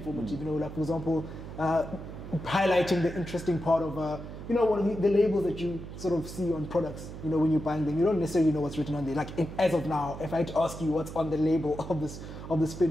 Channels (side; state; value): right; noise; hum, 11 dB below the sound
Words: Like, for example, highlighting the interesting part of you know, one of the labels that you sort of see on products, you know, when you're buying them, you don't necessarily know what's written on there. Like, as of now, if I had to ask you what's on the label of the